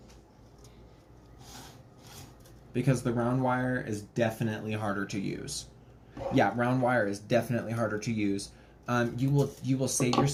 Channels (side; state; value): both; identical; correlation 1.00